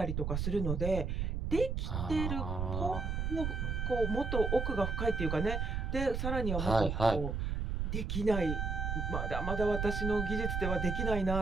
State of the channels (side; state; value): right; noise; rumble, 1 dB below the sound